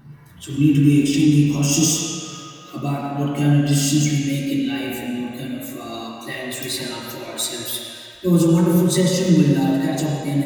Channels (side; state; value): both; identical; correlation 1.00